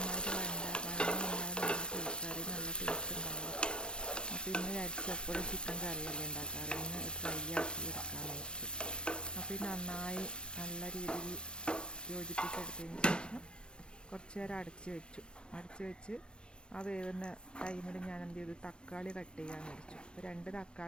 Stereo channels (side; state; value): right; late; 0.055 ms